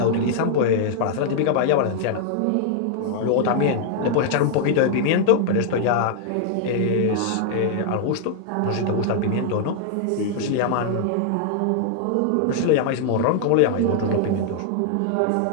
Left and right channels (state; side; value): different; both; correlation -0.01